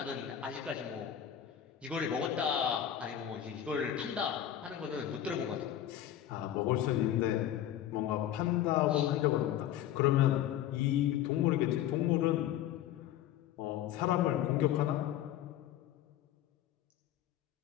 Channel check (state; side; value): quieter; right; 11.3 dB